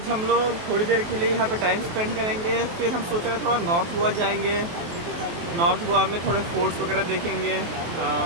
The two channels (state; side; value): late; left; 23 ms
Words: हम लोग थोड़ी देर के लिए यहाँ पे टाइम स्पेंड करेंगे, फिर हम सोच रहे हैं थोड़ा नॉर्थ गोवा जाएंगे. नॉर्थ गोवा में थोड़े फोर्ट्स वगैरह देखेंगे,